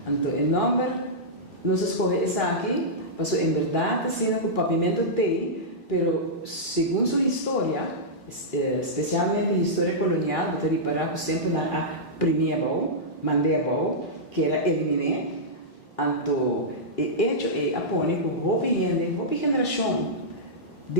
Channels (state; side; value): normal; both; correlation -0.12